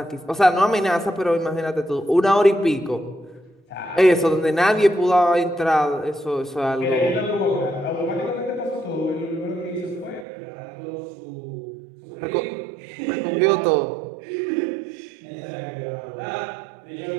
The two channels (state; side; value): drops out; left; at 10.2 s